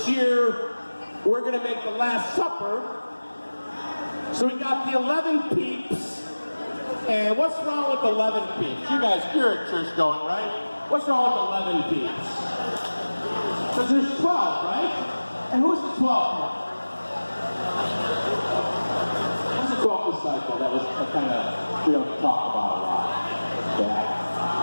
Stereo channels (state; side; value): inverted; both; correlation -1.00